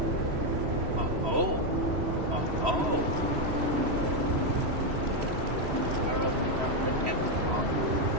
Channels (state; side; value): late; left; 3.0 ms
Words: Oh. Apparently not the net on.